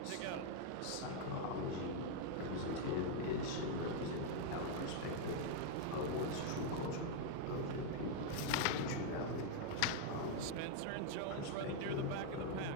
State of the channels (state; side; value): different; both; correlation 0.00